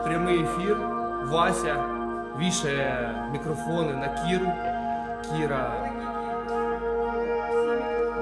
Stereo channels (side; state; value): both; identical; correlation 1.00